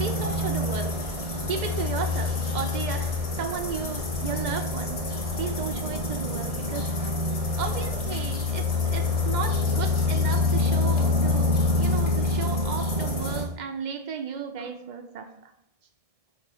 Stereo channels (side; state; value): left; late; 1.6 ms